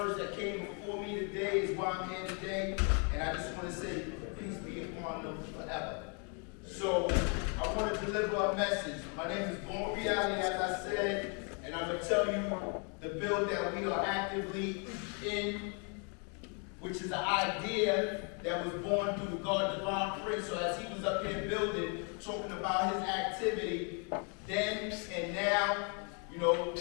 that came before me today is why I'm here today. And I just want to say, peace be upon them forever. So I want to deliver a message. My name is Born Reality, as I said, and I'm going to tell you the bill that we are actively in, which is an idea that was born through the God Divine Prince. So as he was up here building, talking about his activity, then and now, you know,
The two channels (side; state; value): right; quieter; 37.5 dB